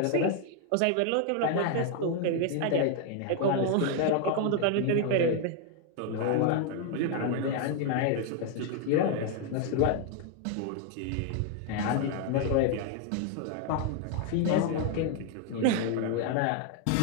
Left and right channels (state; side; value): different; both; correlation 0.00